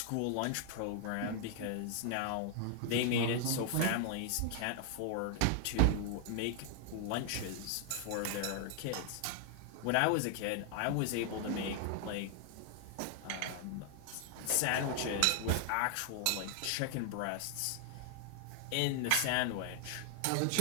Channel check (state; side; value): different; both; correlation 0.00